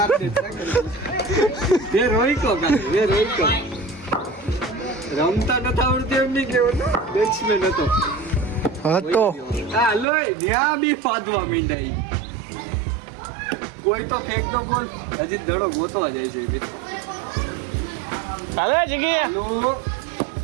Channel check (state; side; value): drops out; left; at 10.1 s